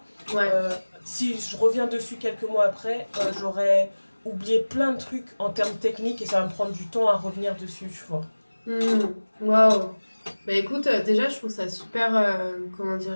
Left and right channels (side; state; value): both; inverted; correlation -1.00